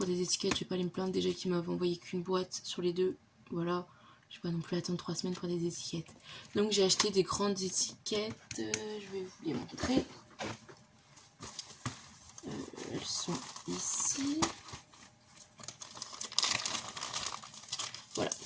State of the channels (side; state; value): both; identical; correlation 1.00